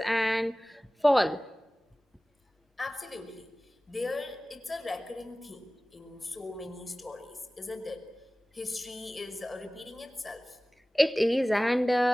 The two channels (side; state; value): both; normal; correlation 0.98